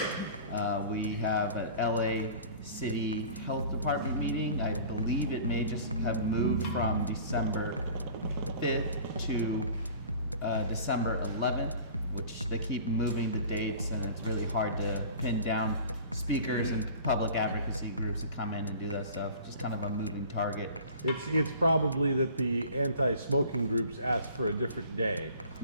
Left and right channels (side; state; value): both; inverted; correlation -0.44